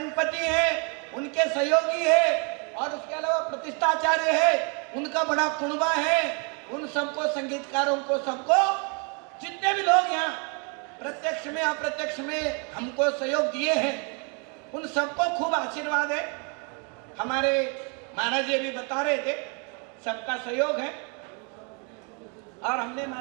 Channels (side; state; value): left; quieter; 34.8 dB